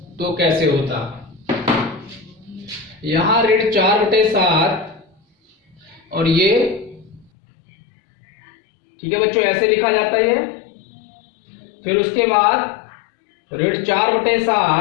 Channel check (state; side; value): drops out; right; at 7.2 s